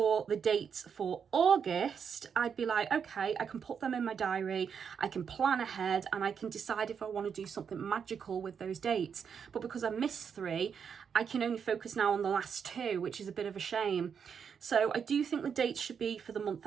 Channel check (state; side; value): quieter; left; 7.0 dB